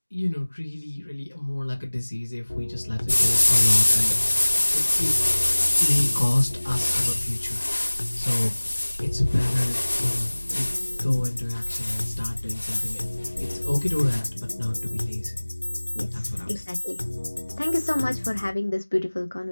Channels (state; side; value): inverted; both; correlation -1.00